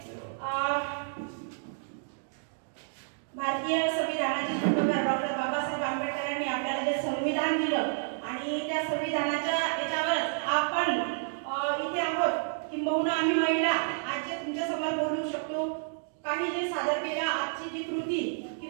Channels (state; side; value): silent; left; digital silence